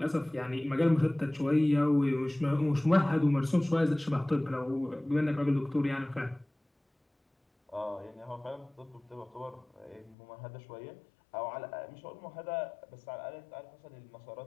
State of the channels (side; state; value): right; drops out; at 10.2 s